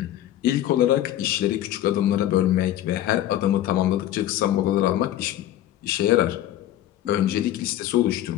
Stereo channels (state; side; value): quieter; right; 12.9 dB